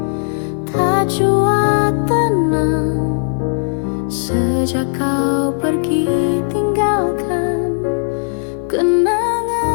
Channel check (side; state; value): right; silent; digital silence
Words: tak jua tenang sejak kau pergi tinggalkan kenangan.